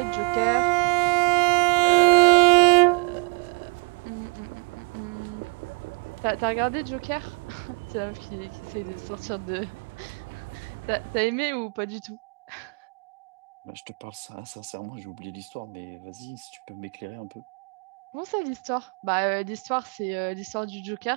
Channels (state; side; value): quieter; left; 34.4 dB